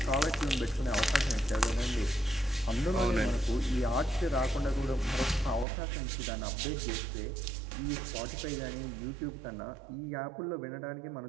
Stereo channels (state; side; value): drops out; left; at 5.7 s